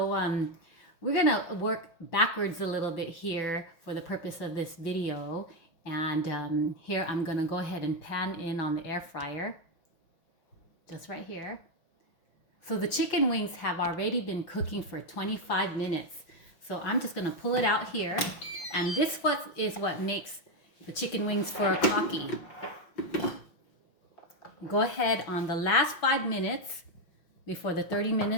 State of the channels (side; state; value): right; late; 5.8 ms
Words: we're going to work backwards a little bit here for the purpose of this video. And here I'm going to go ahead and pan in on the air fryer, just right here. So the chicken wings have already been cooking for 25 minutes. So I'm just gonna pull it out here. And this is what makes the chicken wings furikaki. Go ahead on the last 5 minutes, before the 30